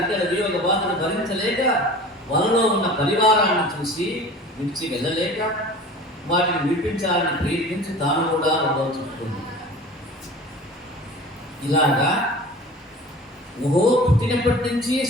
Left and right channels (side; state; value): both; normal; correlation 0.40